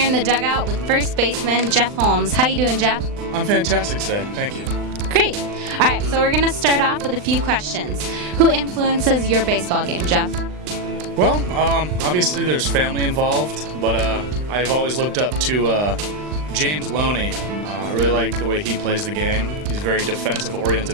in the dugout with first baseman Jeff Holmes. How you doing, Jeff? I'm fantastic today, thank you. Great. All right, so we're going to start off with a few questions. Who influences your baseball game, Jeff? Well, obviously there's family involved, but I've always looked up to James Loney. I really like the way he plays the game. He's a very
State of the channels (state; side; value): late; left; 39 ms